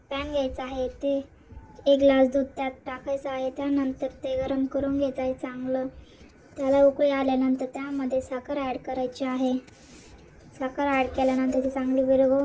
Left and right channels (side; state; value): both; identical; correlation 1.00